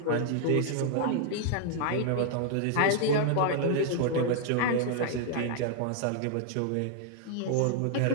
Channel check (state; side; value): different; both; correlation 0.00